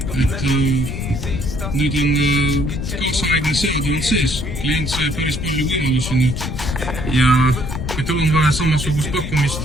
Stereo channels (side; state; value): left; noise; rumble, 5 dB below the sound